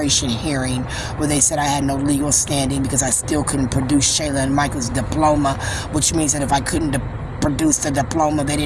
hearing where they said I had no legal standing because I still couldn't produce Shayla and Michael's diploma, which means that if I couldn't produce the diploma, they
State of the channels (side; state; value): both; identical; correlation 1.00